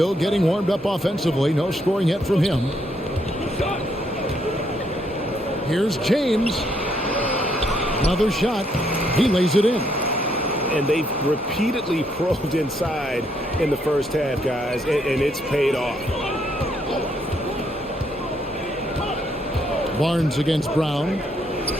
getting warmed up offensively. No scoring yet from him. Here's James. Another shot. He lays it in. And they've repeatedly probed inside in the first half, guys, and it's paid off. Barnes against Brown.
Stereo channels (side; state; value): both; normal; correlation 0.73